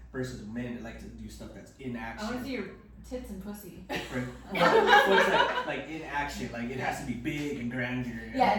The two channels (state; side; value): identical; both; correlation 1.00